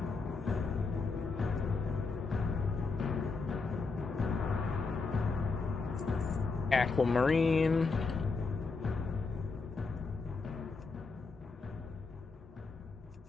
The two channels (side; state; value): right; quieter; 4.2 dB